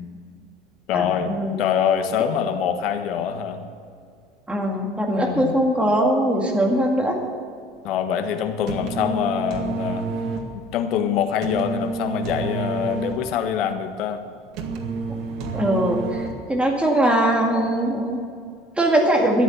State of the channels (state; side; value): normal; both; correlation 0.53